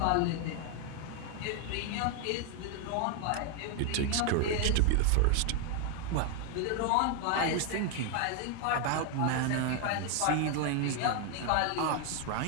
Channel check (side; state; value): both; different; correlation 0.01